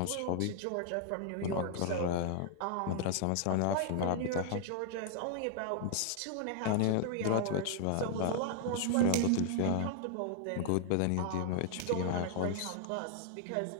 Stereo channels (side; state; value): both; different; correlation 0.00